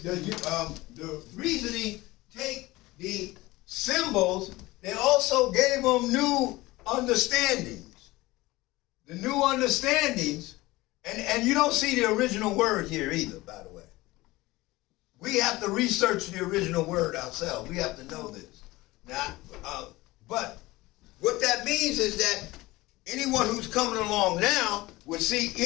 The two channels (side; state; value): right; quieter; 19.8 dB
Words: reasoning take the symbols, they also gave them new understandings. The new understandings, and you don't see the original word here either, by the way. We have to research the original word ourselves. We have to know this. Now, but what that means is that anyone who's coming along now would see